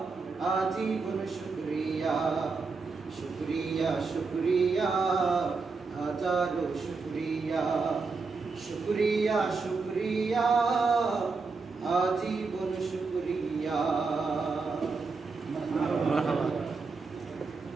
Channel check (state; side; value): quieter; left; 4.4 dB